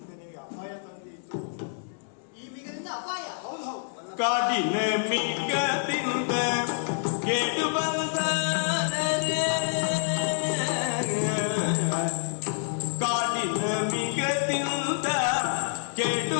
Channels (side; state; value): right; silent; 60 dB below the other